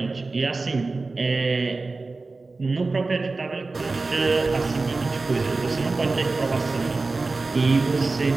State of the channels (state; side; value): quieter; left; 3.6 dB